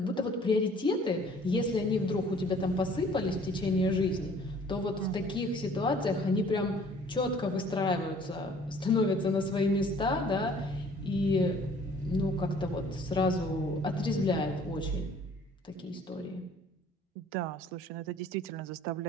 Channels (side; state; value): both; normal; correlation 0.54